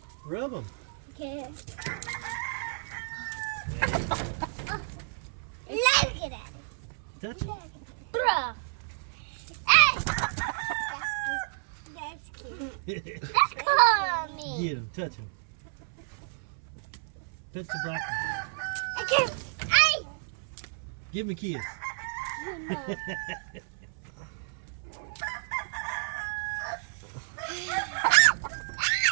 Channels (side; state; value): left; silent; 57 dB below the other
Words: Rub him. Okay. Look at that. Touch him. Bruh. Hey! That's cute. That's cool on me. Get him. Touch him. Touch the black one. I can't. Hey! Give him a kiss.